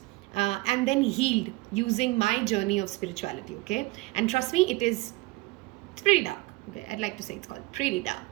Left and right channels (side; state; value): left; quieter; 22.0 dB